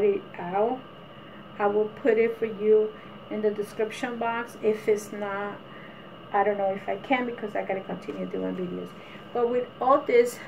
it out, I will put it for you in the description box. If it's not, I don't know if I can, because I gotta continue doing videos. But with all this,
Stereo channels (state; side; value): identical; both; correlation 1.00